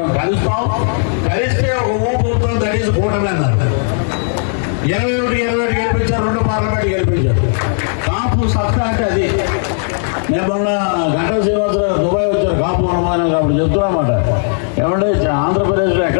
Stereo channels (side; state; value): right; silent; digital silence